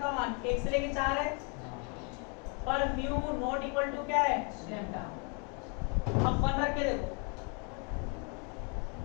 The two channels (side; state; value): right; quieter; 35.7 dB